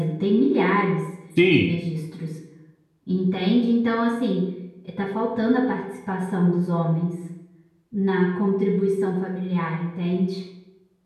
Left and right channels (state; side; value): identical; both; correlation 1.00